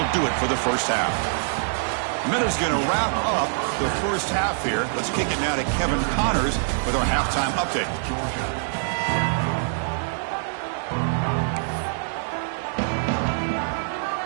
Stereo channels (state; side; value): silent; left; digital silence